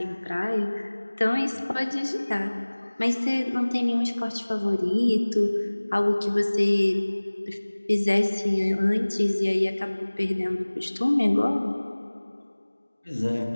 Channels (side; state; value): both; inverted; correlation -1.00